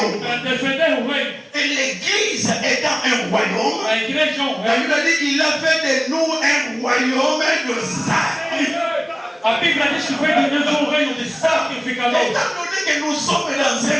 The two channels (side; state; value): both; identical; correlation 1.00